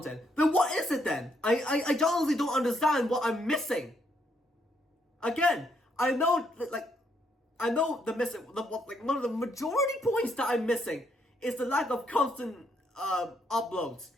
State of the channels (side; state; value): both; normal; correlation 0.74